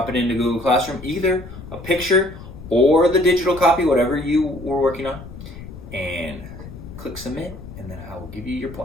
it into Google Classroom, either a picture or the digital copy, whatever you were working on, and click submit, and then I will give you your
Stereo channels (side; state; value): left; noise; rumble, 14 dB below the sound